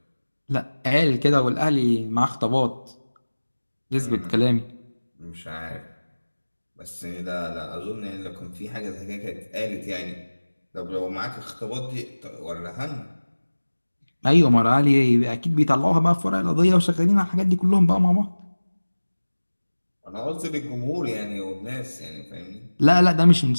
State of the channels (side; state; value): both; inverted; correlation -1.00